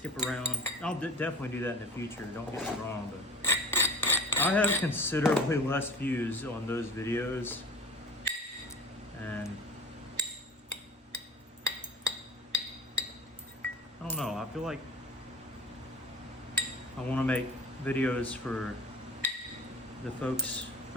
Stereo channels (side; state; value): both; normal; correlation 0.38